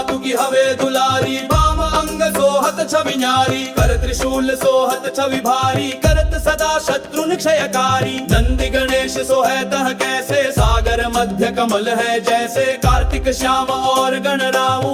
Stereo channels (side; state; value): both; identical; correlation 1.00